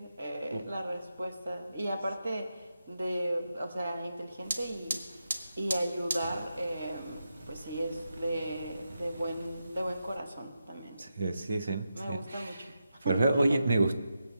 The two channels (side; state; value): both; inverted; correlation -0.88